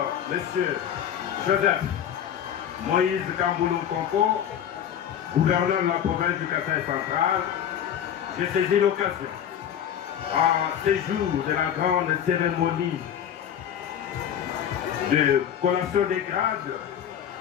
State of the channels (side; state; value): right; quieter; 9.5 dB